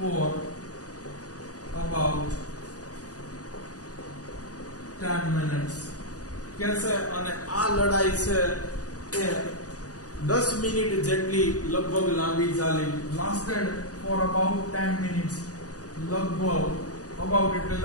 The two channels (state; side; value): late; right; 0.67 ms